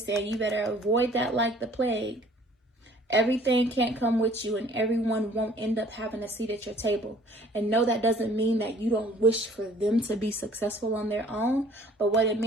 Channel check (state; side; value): normal; both; correlation 0.55